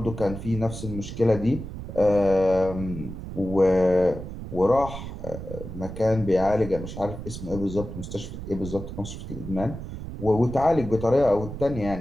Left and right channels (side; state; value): right; noise; rumble, 9 dB below the sound